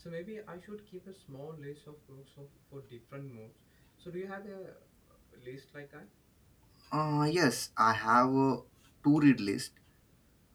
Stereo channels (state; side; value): identical; both; correlation 1.00